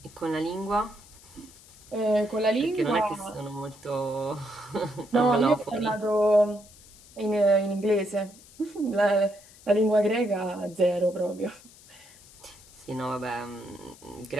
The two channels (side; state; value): left; noise; hiss, 23 dB below the sound